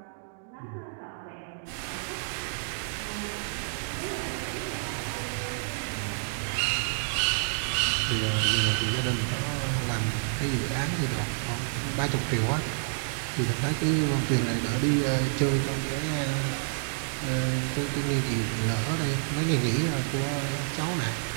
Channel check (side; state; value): left; silent; digital silence